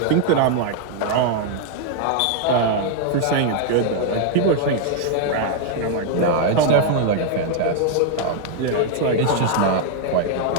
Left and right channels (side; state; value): both; different; correlation 0.00